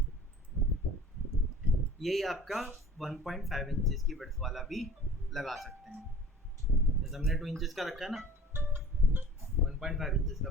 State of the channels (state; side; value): normal; both; correlation 0.46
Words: यही आपका 1.5 इंचेस की विड्थ वाला भी लगा सकते हैं, जैसे हमने 2 इंचेस का रखा है ना, 1.5 इंचेस का